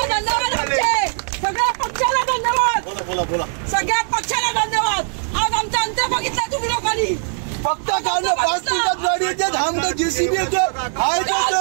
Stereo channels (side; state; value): left; silent; 66 dB below the other